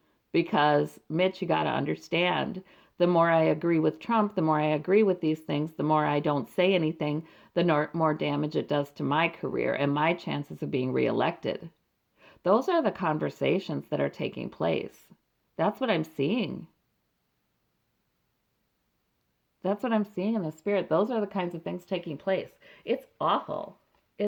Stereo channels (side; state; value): both; identical; correlation 1.00